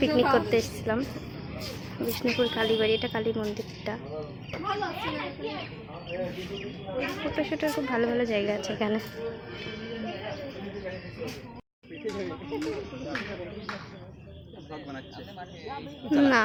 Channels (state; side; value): identical; both; correlation 1.00